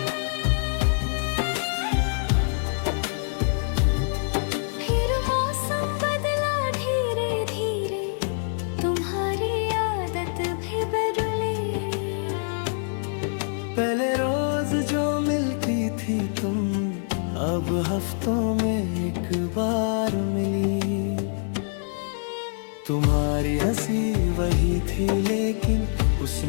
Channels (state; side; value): silent; right; digital silence